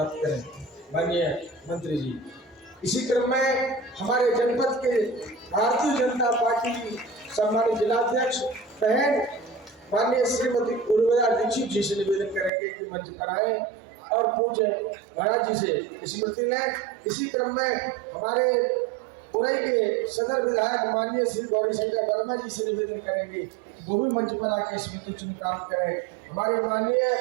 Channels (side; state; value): left; drops out; at 12.5 s